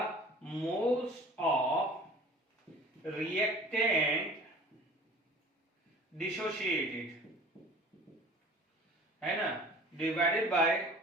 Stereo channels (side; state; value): both; normal; correlation 0.45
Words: मोल्स ऑफ रिएक्टेंट डिसोसिएटेड है ना, divided by